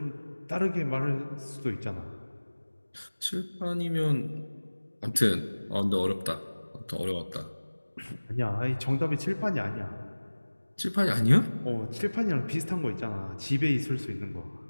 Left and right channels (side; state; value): both; inverted; correlation -1.00